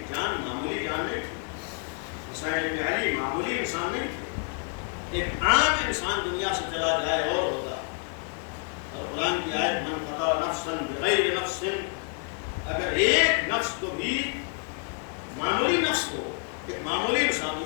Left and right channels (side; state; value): right; quieter; 39.9 dB